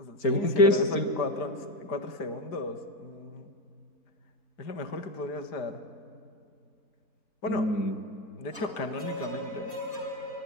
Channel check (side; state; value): right; late; 4.2 ms